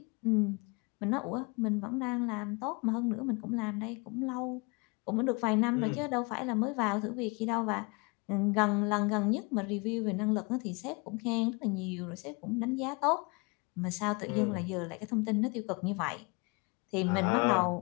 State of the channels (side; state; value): right; quieter; 29.7 dB